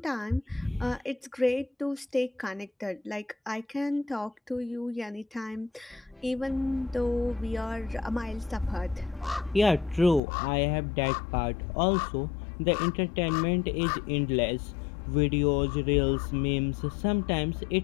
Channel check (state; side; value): drops out; right; at 10.2 s